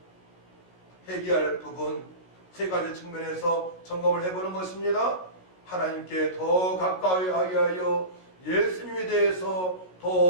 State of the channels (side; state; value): right; late; 16 ms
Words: 회개할 부분 세 가지 측면에서 점검을 해보는 것입니다. 하나님께 더 가까이 하게 하여 예수님에 대해서